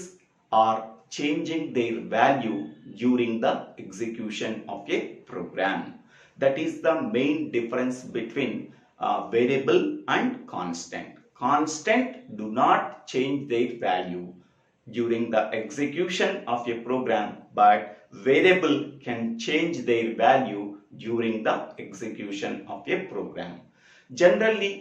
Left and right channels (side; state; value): both; identical; correlation 1.00